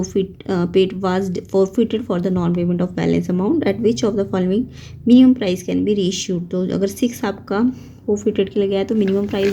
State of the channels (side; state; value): both; identical; correlation 1.00